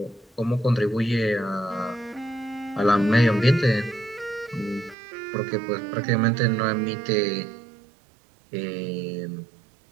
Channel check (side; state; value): left; drops out; at 5.0 s